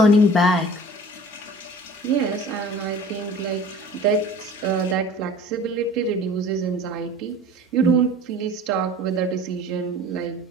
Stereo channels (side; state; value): both; normal; correlation 0.43